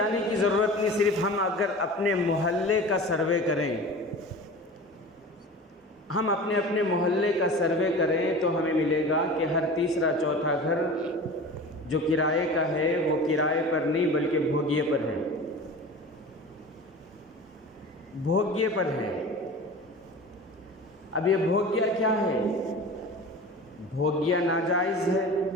کی ضرورت نہیں، صرف ہم اگر اپنے محلے کا سروے کریں، ہم اپنے محلے کا سروے کریں تو ہمیں ملے گا کہ ہر تیسرا چوتھا گھر جو کرائے کا ہے وہ کرائے پر نہیں بلکہ بھوگیے پر ہے، بھوگیے پر ہے۔ اب یہ بھوگیا کیا ہے؟ بھوگیا ناجائز ہے،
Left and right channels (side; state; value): both; normal; correlation 0.36